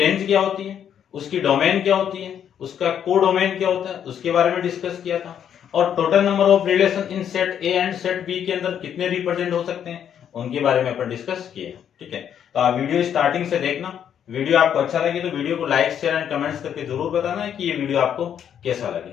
क्या होती है, उसकी डोमेन क्या होती है, उसका कोडोमेन क्या होता है, उसके बारे में डिस्कस किया था। और total number of relation in set A and set B के अंदर कितने रिप्रेजेंट हो सकते हैं, उनके बारे में अपन डिस्कस किए। ठीक है, तो आप वीडियो स्टार्टिंग से देखना। वीडियो आपको अच्छा लगे तो वीडियो को लाइक शेयर एंड कमेंट्स करके जरूर बताना है कि ये वीडियो आपको कैसा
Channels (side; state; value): right; quieter; 9.0 dB